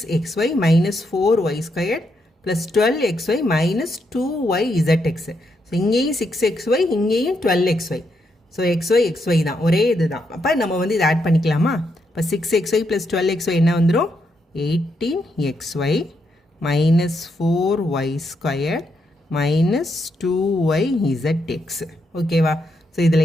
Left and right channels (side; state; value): both; normal; correlation 0.79